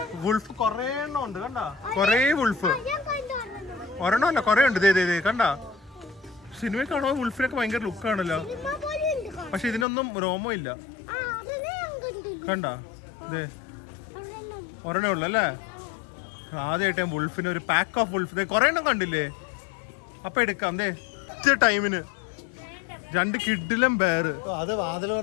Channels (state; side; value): drops out; right; at 9.9 s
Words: വുൾഫ് കൊറേ എണ്ണം ഉണ്ട്. കണ്ടാ കൊറേ വുൾഫ്. ഒരെണ്ണം അല്ല കൊറേ ഉണ്ട്. കണ്ടാ സിനിമയിൽ കാണുമ്പോ വുൾഫിനൊക്കെ ഭയങ്കര ലുക്കാണല്ലോ. പക്ഷെ ഇതിനൊന്നും രോമം ഇല്ല. കണ്ടാ ഒരെണ്ണേ ഉള്ളു അല്ലേ? ആദ്യമായിട്ട് വുൾഫിന് ഒരു പാക്ക് ഓഫ് വുൾഫ് കൊറേ എണ്ണം കണ്ടില്ലേ? അപ്പൊ എടുക്കാം ടൈമിന് 2 കിഡിലും ബെയർ.